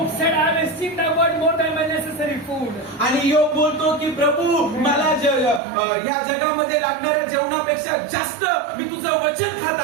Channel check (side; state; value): left; drops out; at 5.6 s